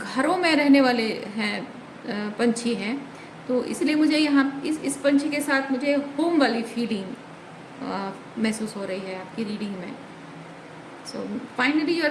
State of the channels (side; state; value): both; identical; correlation 1.00